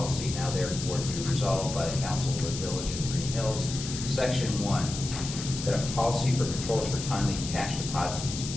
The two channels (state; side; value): noise; left; hiss, 8 dB below the sound